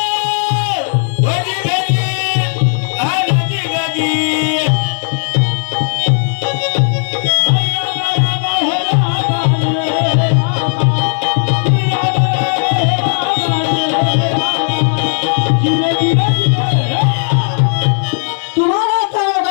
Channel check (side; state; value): right; silent; digital silence